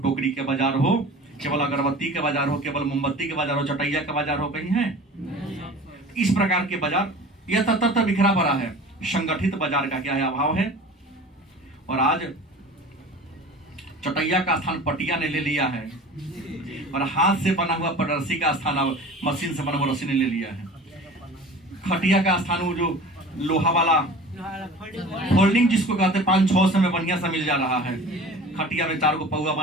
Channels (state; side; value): normal; both; correlation 0.40